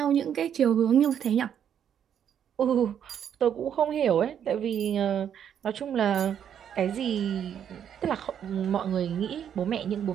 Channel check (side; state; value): left; quieter; 8.9 dB